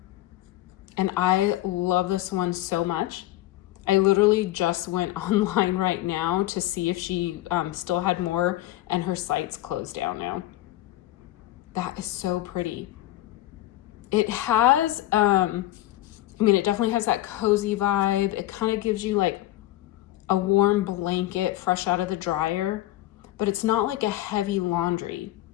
and I love this one so much. I literally just went online right now to see if she still had more, and her site's closed down now. That is so pretty. It has, it definitely has that cozy vibe. It kind of gives you like a warm blanket fresh out of the dryer, but it's not like a heavy laundry.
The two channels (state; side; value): quieter; right; 15.5 dB